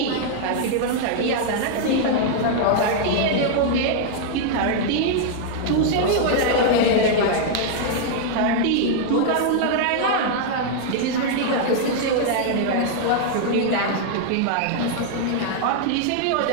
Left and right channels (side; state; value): both; different; correlation -0.01